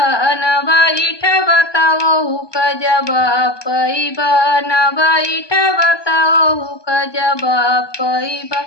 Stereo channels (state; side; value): late; right; 1.2 ms